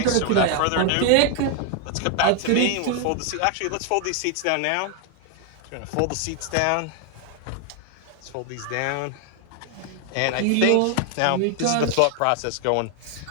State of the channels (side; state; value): both; different; correlation 0.01